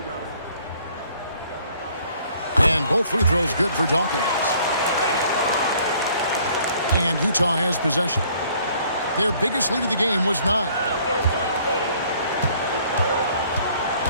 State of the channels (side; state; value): both; inverted; correlation -0.59